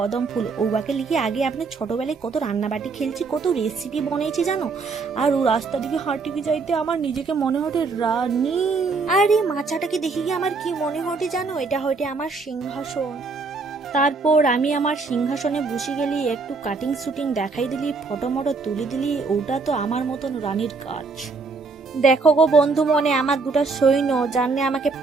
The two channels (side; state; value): left; quieter; 4.3 dB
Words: ফুল। ওবাকে লিখে আগে আপনি ছোটবেলায় কত রান্নাবাটি খেলছি, কত রেসিপি বানিয়েছি জানো। আর ও রাস্তা দিকে হাঁটি যাইতে আমার নিজেকে মনে হতে রানী। আর এই মাচাটাকে দেখে গিয়ে আমার কি মনে হতে জানো, এটা হয়তো আমার সিংহাসন। তারপর আমি আমার সিংহাসনে বসে গেলি, একটু কাটিং শুটিং দেখাই দিলি, ফটো মটো তুলি দিলি, ওটা তো আমার মতন রানীর কাজ। দেখো গো বন্ধু মনে আমার দুটা সৈন্য জানলে আমাকে